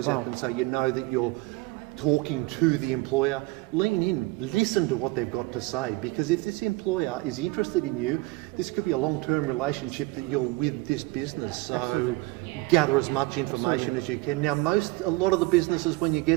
at them so you know that you're talking to the employer. Lean in, listen to what they've got to say, because if this employer is interested in you, this could be a long-term relationship that you're with this business. So Absolutely. Gather as much information as you can. Now a lot of the businesses, when you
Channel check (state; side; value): quieter; left; 21.1 dB